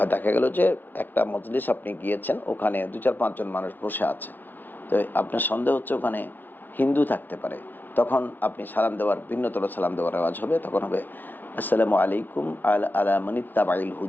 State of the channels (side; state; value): right; late; 0.090 ms